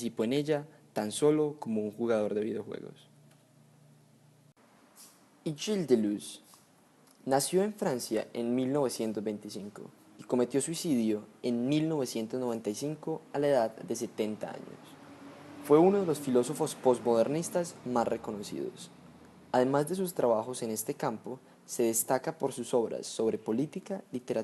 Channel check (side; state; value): both; identical; correlation 1.00